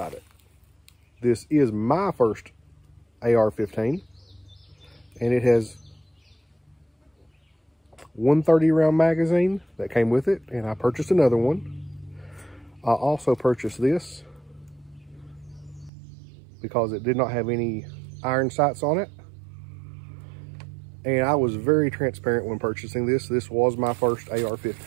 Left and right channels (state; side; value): drops out; left; at 15.9 s